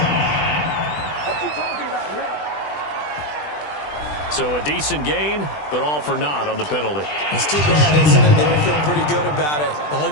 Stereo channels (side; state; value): right; late; 20 ms